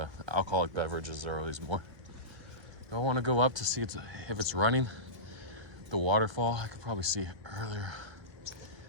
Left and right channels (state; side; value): late; left; 1.6 ms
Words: alcoholic beverages are always more. Do I want to go up to see if it's running? The waterfall, I could probably see it earlier.